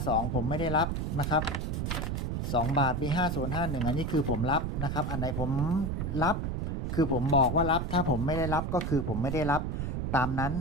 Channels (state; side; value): noise; right; rumble, 1 dB below the sound